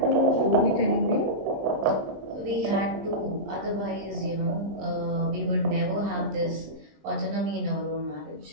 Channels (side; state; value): left; late; 20 ms